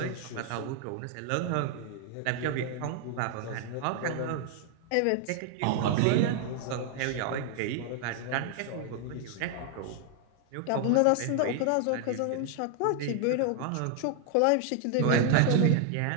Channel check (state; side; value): different; both; correlation 0.00